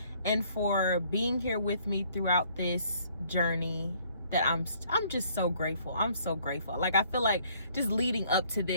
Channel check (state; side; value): inverted; both; correlation -0.62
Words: and for being here with me throughout this journey. That I'm just so grateful. I'm so grateful. Like, I feel like just leading up to